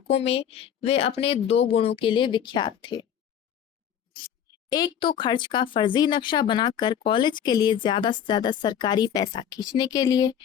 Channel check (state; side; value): quieter; right; 9.2 dB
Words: में वे अपने 2 गुणों के लिए विख्यात थे। एक तो खर्च का फर्जी नक्शा बनाकर कॉलेज के लिए ज्यादा से ज्यादा सरकारी पैसा खींचने के लिए,